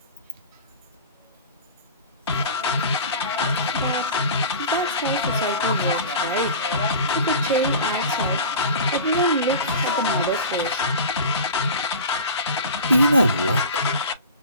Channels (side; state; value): both; inverted; correlation -0.34